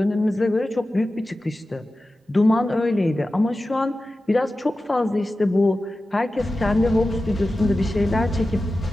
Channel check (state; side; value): normal; both; correlation 0.94